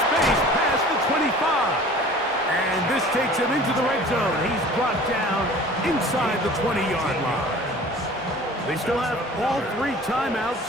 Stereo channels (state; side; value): normal; both; correlation 0.45